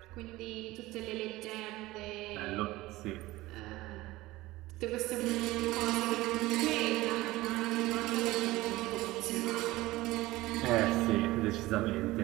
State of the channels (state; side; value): quieter; left; 18.5 dB